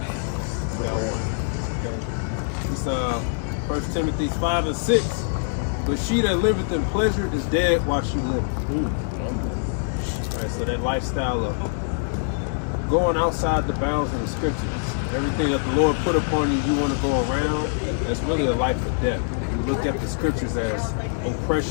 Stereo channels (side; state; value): right; silent; digital silence